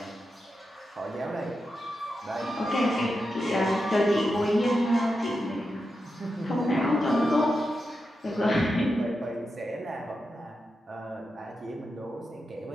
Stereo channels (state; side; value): normal; both; correlation 0.88